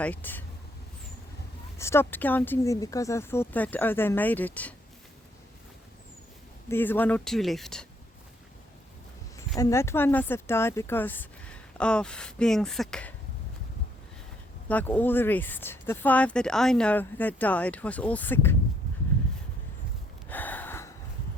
stopped counting them because I thought that, oh, they made it. There's 1 or 2 left. And that one must have died because of being sick, like all the rest. The 5 that I know that died was all sick.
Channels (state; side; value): normal; both; correlation 0.69